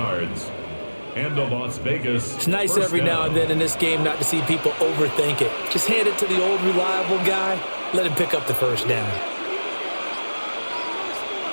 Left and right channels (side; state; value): both; inverted; correlation -1.00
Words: And the Las Vegas. It's nice every now and then in this game not to see people overthink it. Just hand it to the old reliable guy. Let him pick up the first down.